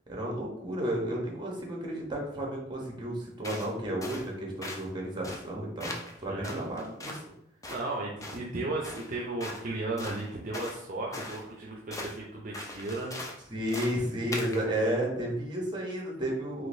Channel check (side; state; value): both; normal; correlation 0.49